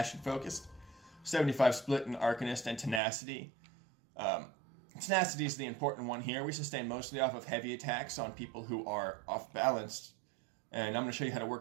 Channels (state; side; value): drops out; left; at 3.0 s